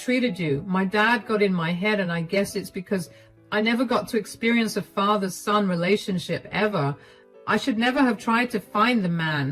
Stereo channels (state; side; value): identical; both; correlation 1.00